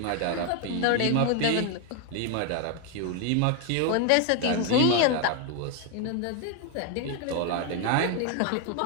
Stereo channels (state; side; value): different; both; correlation 0.01